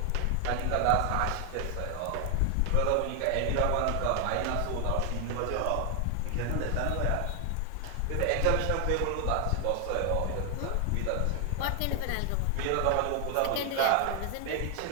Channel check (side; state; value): both; different; correlation 0.00